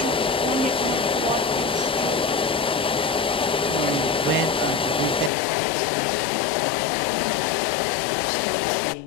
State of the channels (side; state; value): right; drops out; at 5.3 s